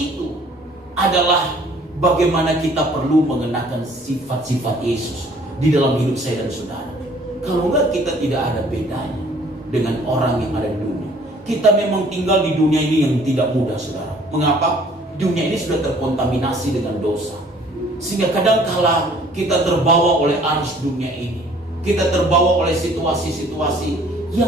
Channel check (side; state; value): both; normal; correlation 0.56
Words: itu adalah bagaimana kita perlu mengenakan sifat-sifat Yesus di dalam hidup saya dan saudara. Kalau enggak, kita tidak ada bedanya dengan orang yang ada di dunia. Kita memang tinggal di dunia ini yang tidak mudah, saudara. Mengapa? Dunia ini sudah terkontaminasi dengan dosa. Sehingga kadangkala kita terbawa oleh arus dunia ini. Kita terbawa oleh situasi-situasi